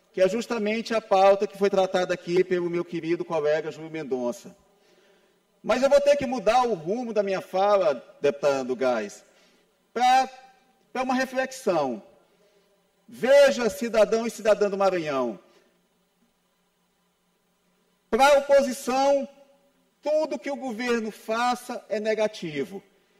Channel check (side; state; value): both; identical; correlation 1.00